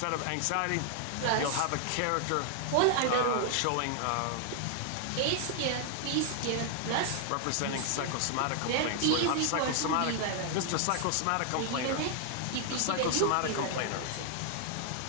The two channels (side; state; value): both; different; correlation 0.00